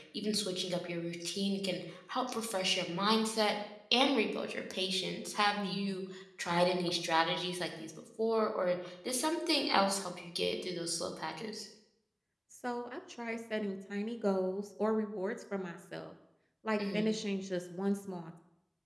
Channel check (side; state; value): both; identical; correlation 1.00